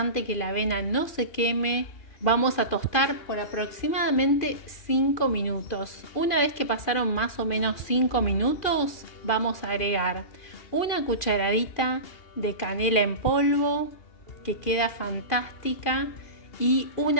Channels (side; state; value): right; late; 2.4 ms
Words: que la avena no se queme. Vamos a tostar por aproximadamente 5 minutos. Una vez que pasaron más o menos 5 minutos, vamos a agregar 1 cucharadita de canela en polvo, que queda fantástica, y